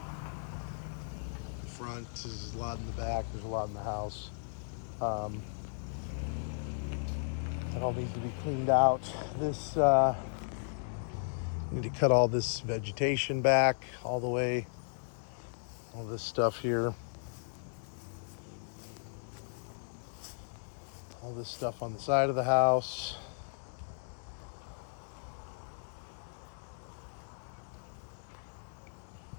front, there's a lot in the back, there's a lot in the house. It all needs to be cleaned out. This need to cut all this vegetation back all the way. All this stuff here. All this stuff on the side of the house.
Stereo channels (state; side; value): silent; right; digital silence